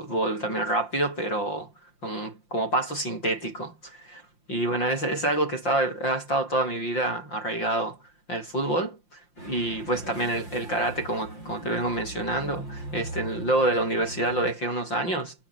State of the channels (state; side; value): late; right; 5.7 ms